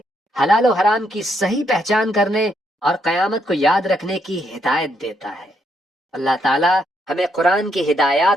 حلال و حرام کی صحیح پہچان کرنے اور قیامت کو یاد رکھنے کی ہدایت دیتا ہے۔ اللہ تعالیٰ ہمیں قرآن کی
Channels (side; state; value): both; normal; correlation 0.76